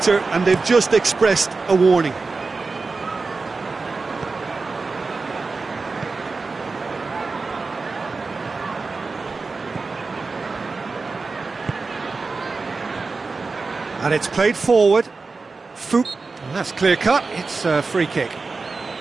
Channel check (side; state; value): left; quieter; 4.1 dB